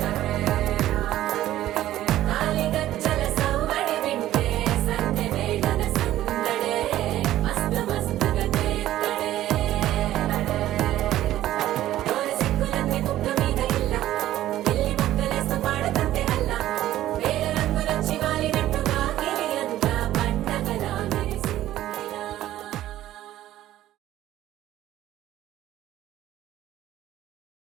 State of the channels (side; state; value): left; quieter; 13.7 dB